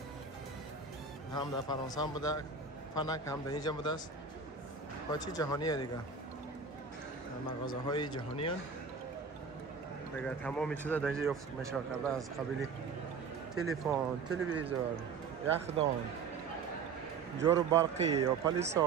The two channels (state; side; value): quieter; left; 5.2 dB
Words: هم در فرانسه هم بوده. فنک هم در اینجا بوده است. با چی جهانیه دیگه. مغازه های جهانی هستند. دیگه تمام چیزا در اینجا یافت میشه کرده از قبیل تلفن، تلویزیون، یخدان، جارو برقی یا